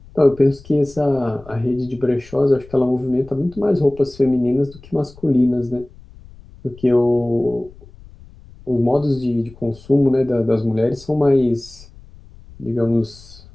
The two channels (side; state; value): left; noise; rumble, 22 dB below the sound